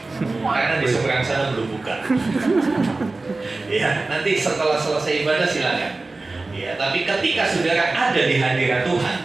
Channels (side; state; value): left; quieter; 3.4 dB